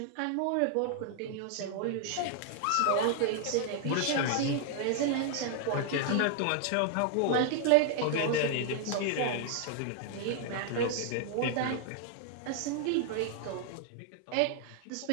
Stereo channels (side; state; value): both; different; correlation 0.00